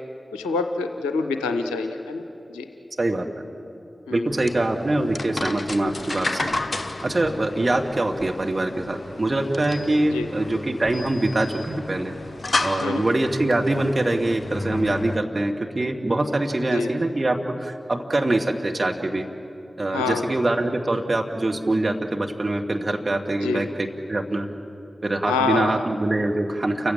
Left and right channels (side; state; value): both; normal; correlation 0.92